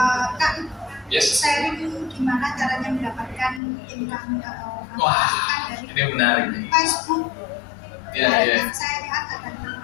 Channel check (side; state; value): right; drops out; at 3.6 s